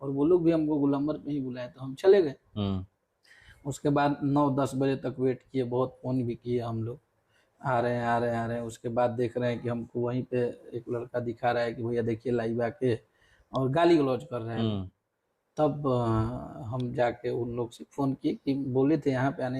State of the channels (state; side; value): identical; both; correlation 1.00